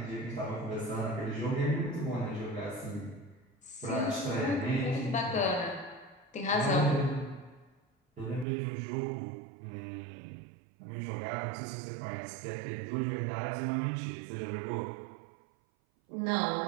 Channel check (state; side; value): drops out; left; at 8.5 s